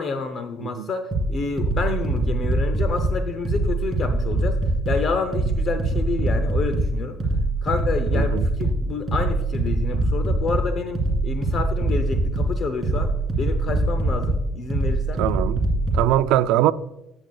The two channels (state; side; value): normal; both; correlation 0.64